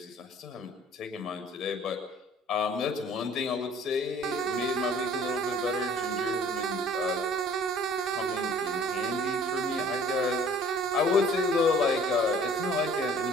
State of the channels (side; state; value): both; normal; correlation 0.51